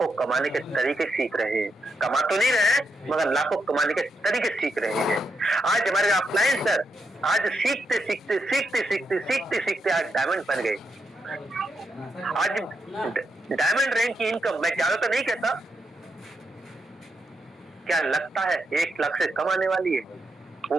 कमाने के तरीके सीख रहे हैं। कमा तो नहीं रहे हैं, मगर लाखों कमाने के तरीके सीख रहे हैं। आज हमारे अपलाइन सर आज सीखते आज डायमंड बन गए। आज डायमंड रैंक की इनकम, मैं ज्यादा तो नहीं कहता, क्या लगता है 1 लाख से कम आने वाली है?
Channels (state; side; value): normal; both; correlation 0.83